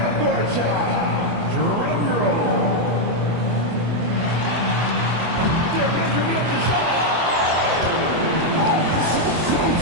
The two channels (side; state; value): left; late; 24 ms